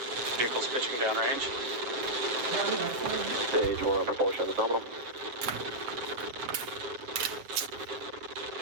Vehicle's pitching downrange. Stage 1 propulsion is nominal.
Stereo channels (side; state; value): left; late; 8.0 ms